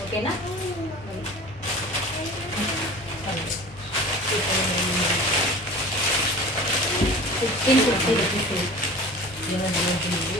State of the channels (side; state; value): both; normal; correlation 0.39